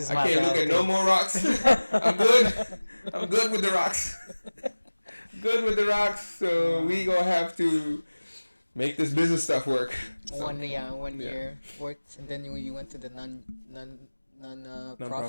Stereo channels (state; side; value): inverted; both; correlation -1.00